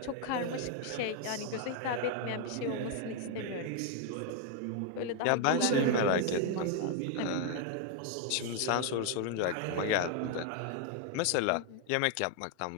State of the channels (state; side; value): different; both; correlation 0.00